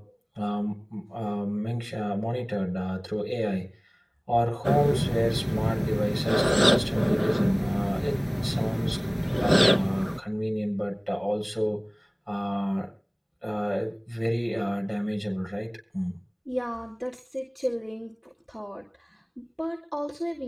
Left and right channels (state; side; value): identical; both; correlation 1.00